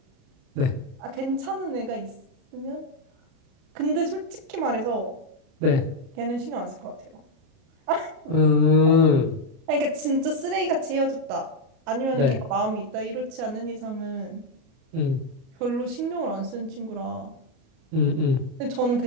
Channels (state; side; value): late; left; 37 ms